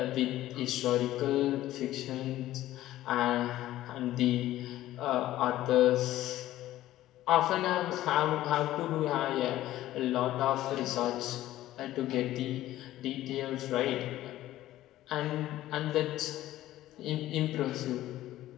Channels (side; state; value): right; quieter; 14.6 dB